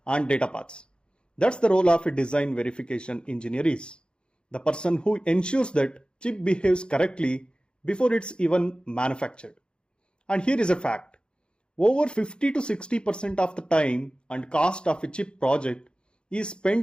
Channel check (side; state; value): right; late; 0.052 ms